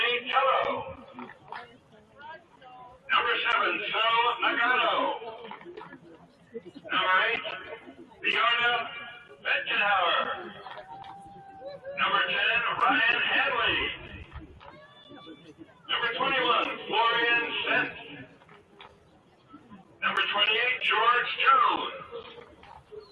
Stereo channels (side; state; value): both; identical; correlation 1.00